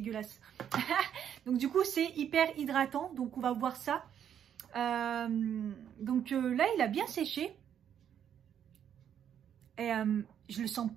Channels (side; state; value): left; quieter; 9.1 dB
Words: Donc du coup, c'est hyper hydratant, donc on va voir ça. Donc là, il a bien séché. Et je le sens